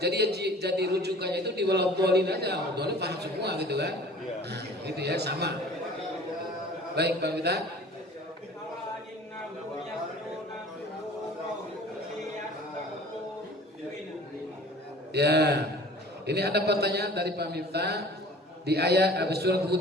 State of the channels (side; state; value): both; normal; correlation 0.46